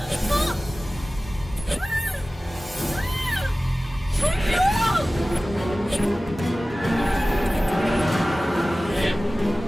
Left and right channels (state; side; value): normal; both; correlation 0.97